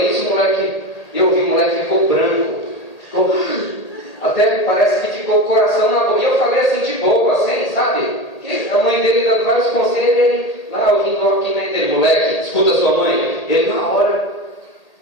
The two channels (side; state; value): right; late; 1.8 ms